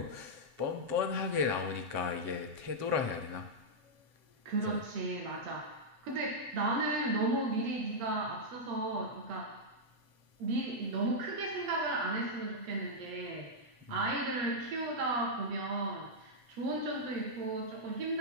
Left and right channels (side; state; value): left; late; 7.3 ms